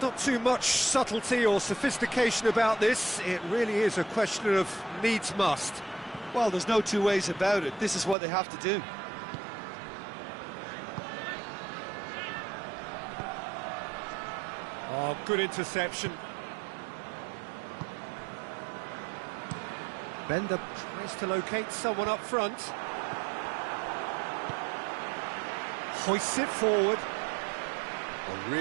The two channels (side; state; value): left; drops out; at 8.2 s